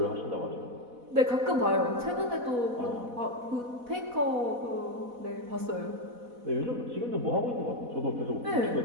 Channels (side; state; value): left; late; 4.1 ms